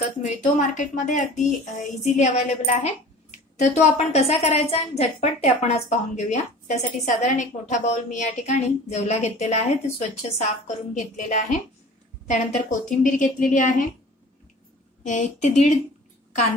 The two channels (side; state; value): both; normal; correlation 0.43